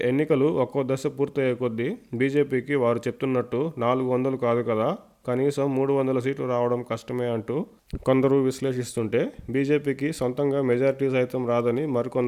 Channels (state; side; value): identical; both; correlation 1.00